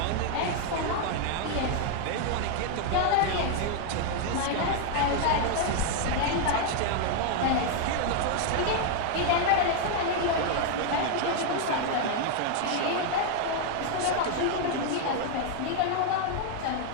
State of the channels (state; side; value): different; both; correlation 0.00